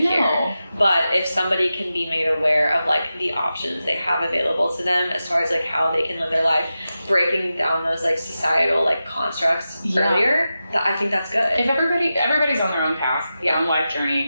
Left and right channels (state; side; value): inverted; both; correlation -0.92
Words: But if somebody can be made aware of like the options they have available to them as far as like how they can live their life breaking down those like societal like constructs earlier, I think that's good. If everybody's on their own path, their own life